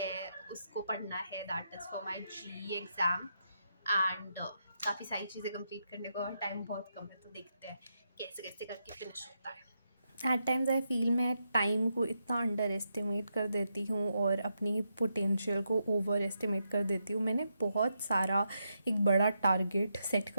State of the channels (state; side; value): inverted; both; correlation -0.83